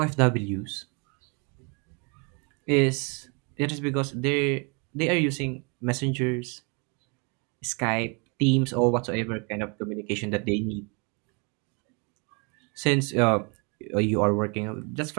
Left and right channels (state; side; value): quieter; left; 33.3 dB